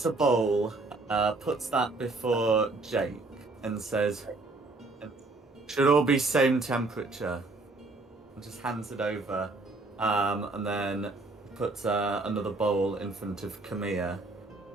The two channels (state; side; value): quieter; left; 3.3 dB